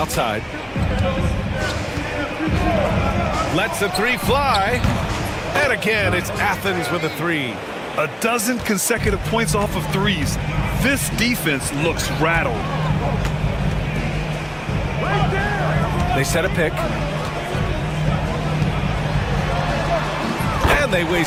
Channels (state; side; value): identical; both; correlation 1.00